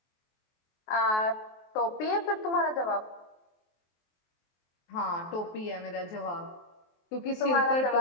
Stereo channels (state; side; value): late; right; 23 ms